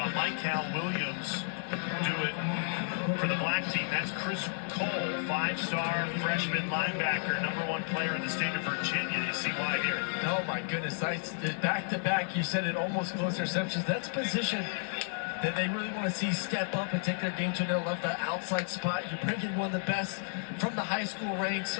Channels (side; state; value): right; silent; digital silence